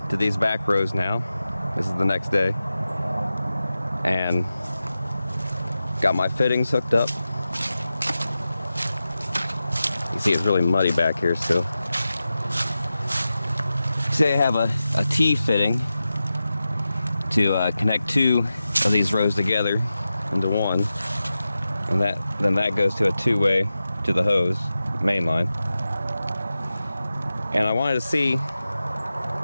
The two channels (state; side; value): inverted; both; correlation -0.93